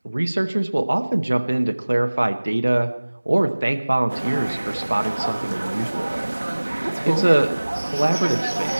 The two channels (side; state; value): both; inverted; correlation -1.00